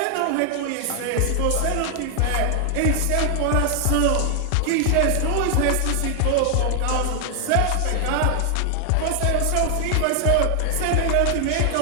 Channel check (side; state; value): both; different; correlation 0.00